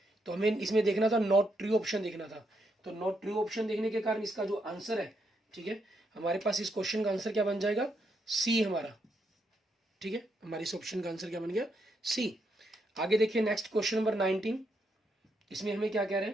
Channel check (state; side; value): normal; both; correlation 0.78